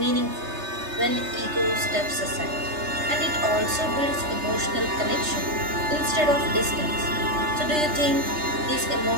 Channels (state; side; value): late; left; 3.3 ms